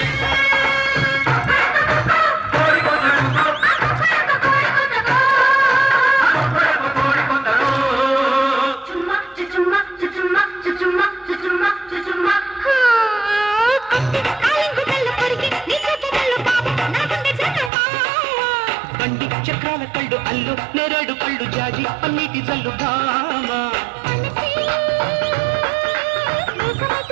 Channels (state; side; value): drops out; left; at 17.7 s